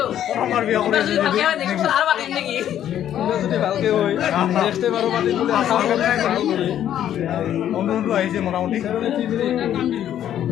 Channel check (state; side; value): quieter; right; 10.9 dB